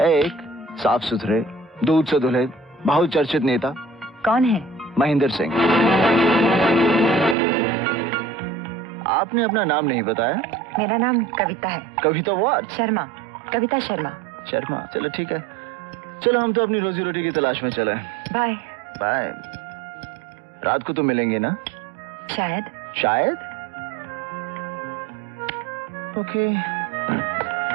साफ सुथरे, दूध से धुले, बहुत चर्चित नेता। कौन है? महेंद्र सिंह। आपने अपना नाम नहीं बताया। मेरा नाम कविता है। कविता व्हाट? शर्मा, कविता शर्मा। शर्मा, चलो ठीक है। चलो हम तो अपनी रोजी रोटी की तलाश में चले। बाय। बाय। रात को तो मिलेंगे ना? शायद। शायद? ओके।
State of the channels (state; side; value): drops out; left; at 7.4 s